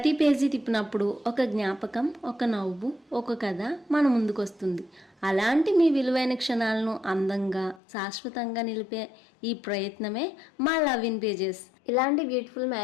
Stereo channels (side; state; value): right; drops out; at 7.8 s